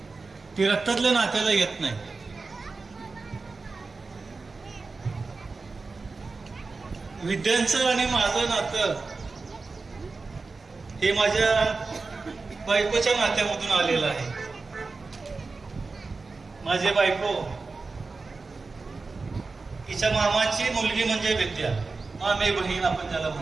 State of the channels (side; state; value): left; quieter; 4.0 dB